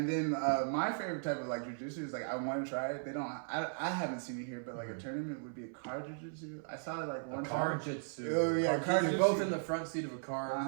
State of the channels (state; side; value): silent; left; 53 dB below the other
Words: then my favorite type of like jujitsu is like I want to try it. They don't. I haven't seen it here, but like a tournament would be a car jujitsu. I saw it like one Car time. jitsu. Oh, yeah, car You're jitsu. both in the front seat of a car,